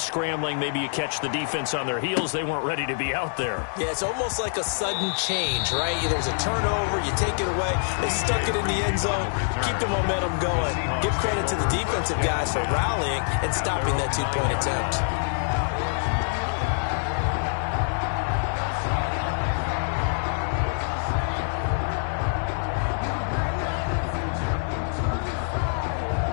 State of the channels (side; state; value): right; silent; digital silence